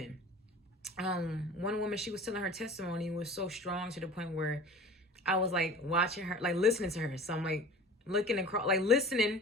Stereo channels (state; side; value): normal; both; correlation 0.40